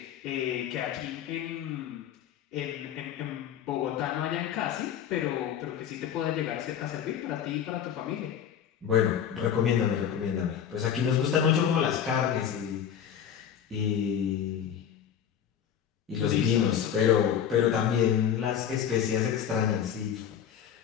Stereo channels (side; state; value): right; quieter; 8.9 dB